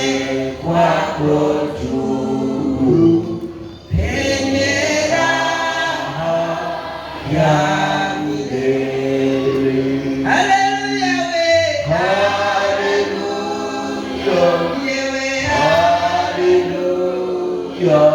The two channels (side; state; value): both; identical; correlation 1.00